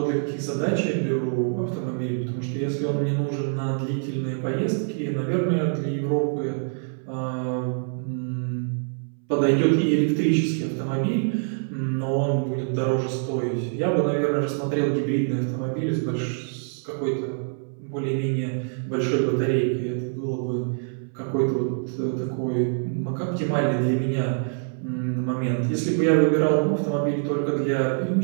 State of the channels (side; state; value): left; silent; 62 dB below the other